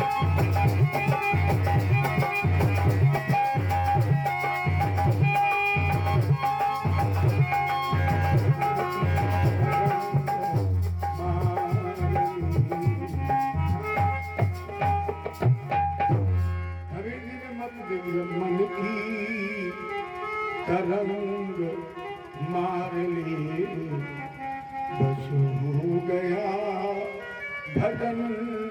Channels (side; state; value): both; identical; correlation 1.00